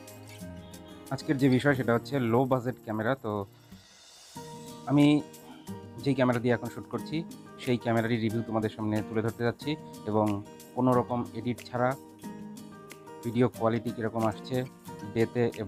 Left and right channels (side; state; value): both; identical; correlation 1.00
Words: আজকের যে বিষয় সেটা হচ্ছে লো বাজেট ক্যামেরা। তো আমি যেই ক্যামেরা দিয়ে এখন শ্যুট করছি সেই ক্যামেরারই রিভিউ তোমাদের সামনে তুলে ধরতে যাচ্ছি এবং কোনো রকম এডিট ছাড়া ভিডিও কোয়ালিটি কীরকম আসছে ডেতে